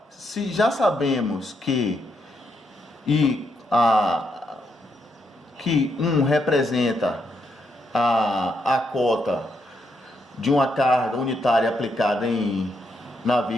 se já sabemos que que 1 representa a cota de uma carga unitária aplicada na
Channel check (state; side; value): normal; both; correlation 0.79